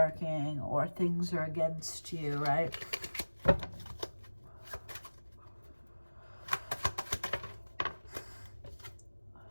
or things are against you, right?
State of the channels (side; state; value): both; inverted; correlation -1.00